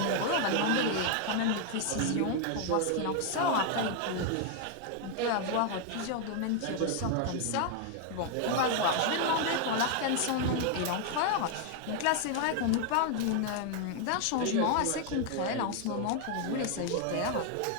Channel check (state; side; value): different; both; correlation 0.00